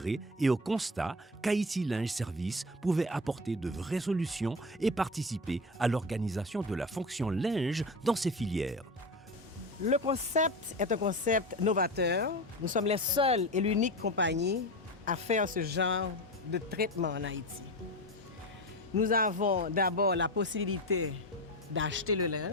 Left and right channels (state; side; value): normal; both; correlation 0.24